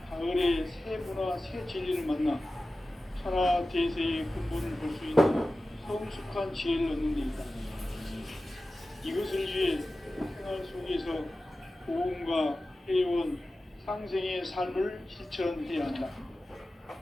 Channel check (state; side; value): normal; both; correlation 0.95